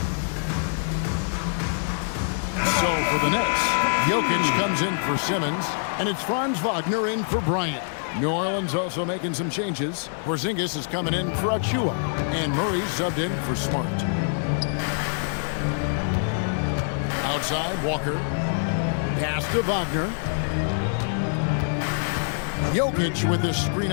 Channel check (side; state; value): right; silent; 62 dB below the other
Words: So for the Nets, Jokic comes in for Simmons, and it's Franz Wagner in for Bryant. New Orleans also making some changes. Porzingis is coming in for Achua, and Murray's subbed in for Smart. Outside, Walker. Pass to Wagner. Jokic with his screen